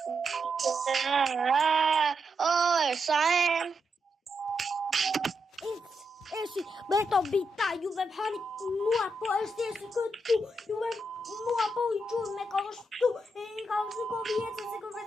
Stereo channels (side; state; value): both; normal; correlation 0.83